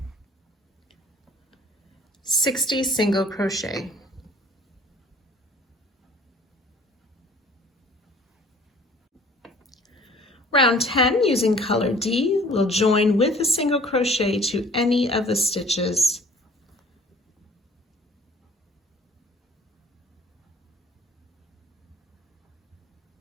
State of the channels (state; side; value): normal; both; correlation 0.52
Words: 60 single crochet. Round 10, using color D, we'll join with a single crochet to any of the stitches.